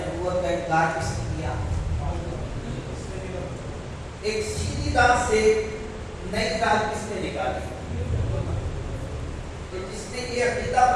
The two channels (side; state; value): both; identical; correlation 1.00